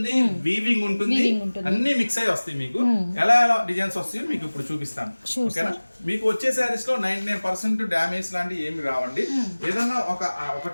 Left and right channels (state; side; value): inverted; both; correlation -1.00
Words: వీవింగ్ ఉంటుంది, అన్ని మిక్స్ అయ్యి వస్తాయి. మీకు ఎలా ఎలా డిజైన్స్ వస్తాయో మీకు ఇప్పుడు చూపిస్తాను. ఓకేనా. మీకు వచ్చే శారీస్ లో 99% డ్యామేజ్ లాంటివి ఏమి రావండి. ఏదన్నా ఒక